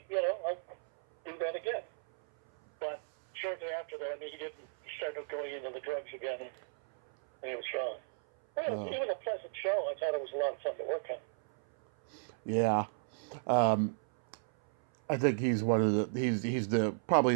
I'll do that again. But shortly after that, he started going into the drugs again, and he was gone. Well, it was a pleasant show. I thought it was a lot of fun to work on. Yeah. I think he's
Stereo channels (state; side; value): silent; left; 55 dB below the other